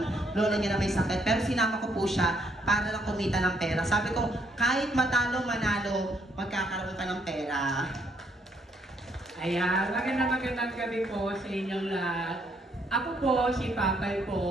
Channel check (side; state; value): both; normal; correlation 0.71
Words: lola niya na may sakit. Pero sinama ko po siya para lang kumita ng pera. Sabi ko, kahit matalo, manalo, magkakaroon ka ng pera. Ayan, magandang gabi po sa inyong lahat. Ako po si Papay